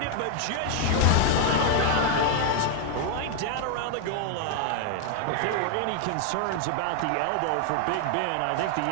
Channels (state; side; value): different; both; correlation 0.00